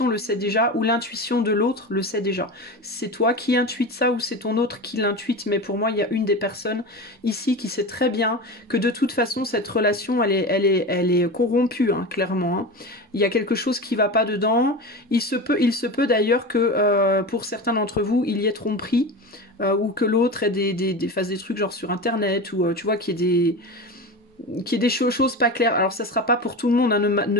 le sait déjà, ou l'intuition de l'autre le sait déjà. C'est toi qui intuites ça, ou c'est ton autre qui l'intuite, mais pour moi, il y a une des personnes ici qui sait très bien que de toute façon, cette relation, elle est corrompue, hein, clairement. Hein. Il y a quelque chose qui va pas dedans. Il se peut d'ailleurs que pour certains d'entre vous, il y ait tromperie, ou que l'autre fasse des trucs genre sur Internet, ou tu vois, qu'il y ait des choses pas claires. Alors ça sera pas pour tout le monde, hein.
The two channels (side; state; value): both; normal; correlation 0.27